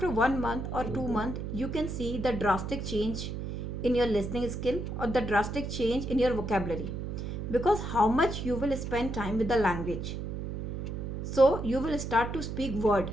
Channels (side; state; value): right; noise; hum, 5 dB below the sound